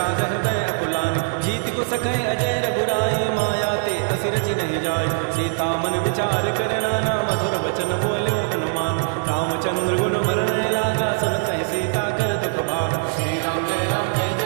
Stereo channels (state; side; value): silent; left; 64 dB below the other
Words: हृदय अकुलानी जीत को सकै अजय रघुराई माया ते असि रचि नहीं जाय सीता मन विचार कर नाना मधुर वचन बोल्यो हनुमान रामचंद्र गुण वर्णय लागा सुनत ही सीता कर दुख भागा श्री राम जय राम जय